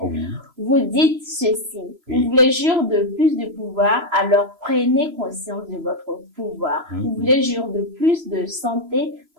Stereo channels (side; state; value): left; late; 3.0 ms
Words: Oui. vous dites ceci. Oui. Vous voulez jouir de plus de pouvoir, alors prenez conscience de votre pouvoir. Vous voulez jouir de plus de santé,